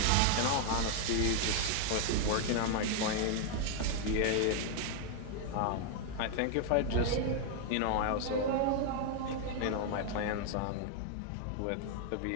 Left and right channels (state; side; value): different; both; correlation 0.00